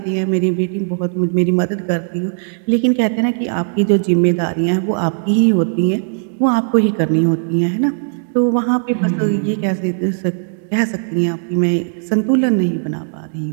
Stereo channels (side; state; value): left; silent; digital silence